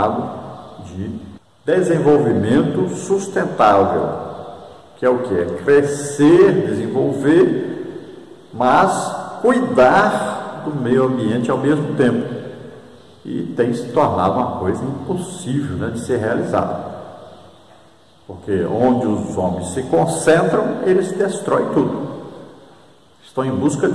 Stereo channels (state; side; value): identical; both; correlation 1.00